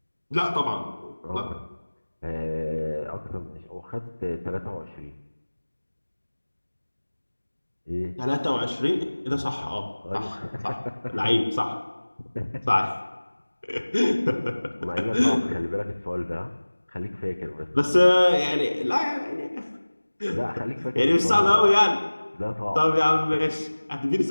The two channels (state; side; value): inverted; both; correlation -1.00